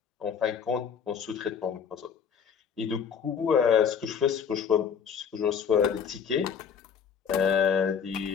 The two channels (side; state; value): right; quieter; 7.1 dB